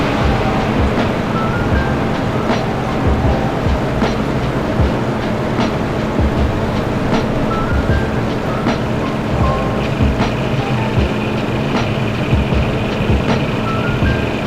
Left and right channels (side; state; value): both; identical; correlation 1.00